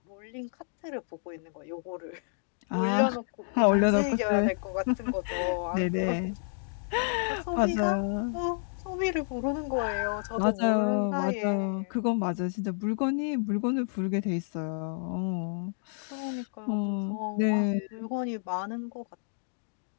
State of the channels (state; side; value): silent; right; digital silence